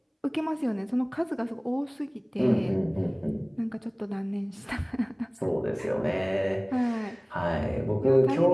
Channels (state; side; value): identical; both; correlation 1.00